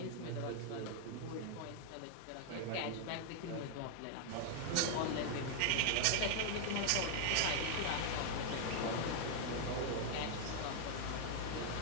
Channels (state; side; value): different; both; correlation 0.00